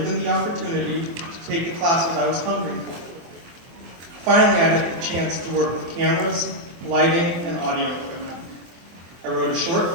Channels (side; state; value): left; late; 24 ms